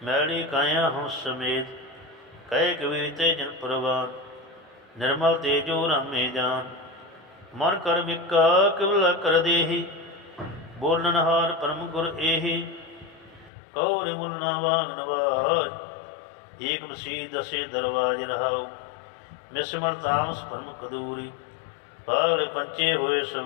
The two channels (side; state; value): right; drops out; at 13.5 s